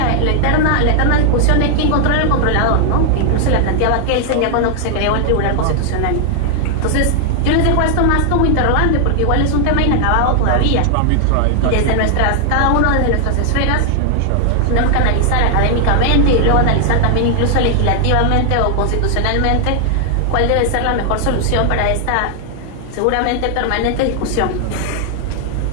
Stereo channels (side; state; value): both; different; correlation 0.00